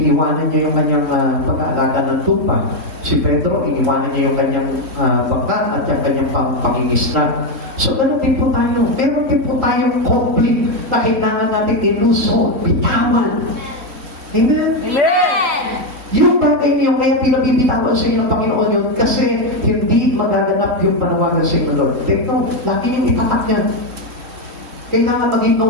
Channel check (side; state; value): left; late; 3.1 ms